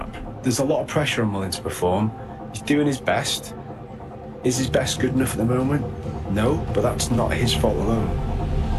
There's a lot of pressure on Mullen to perform. He's doing his best. Is his best good enough at the moment? No, but that's not his fault alone.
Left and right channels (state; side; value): identical; both; correlation 1.00